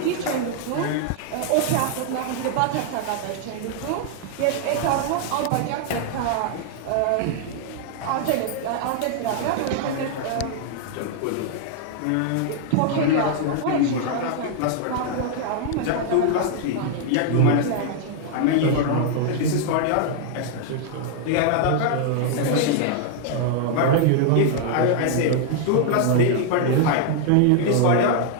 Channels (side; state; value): both; different; correlation 0.00